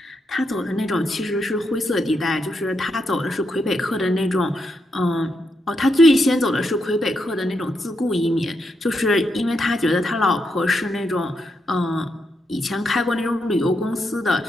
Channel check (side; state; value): both; normal; correlation 0.82